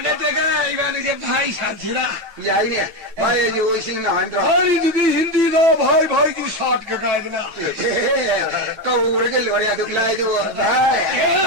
내가 이거는 이제 바이 산지라 야이네 마에 요시는 안 들어 아니 누기 힌디가 바이 그 샷가 가지나 까오르게 로리야 두글라이도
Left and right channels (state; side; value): late; left; 9.0 ms